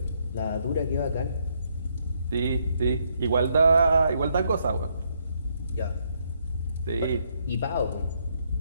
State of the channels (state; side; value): inverted; both; correlation -0.74